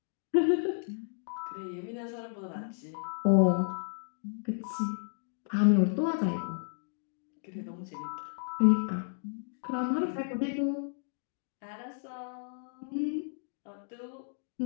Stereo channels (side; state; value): right; silent; digital silence